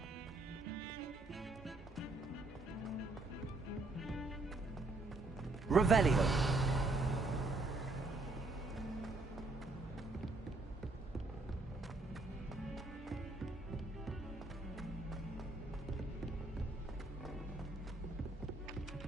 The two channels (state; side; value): quieter; left; 3.1 dB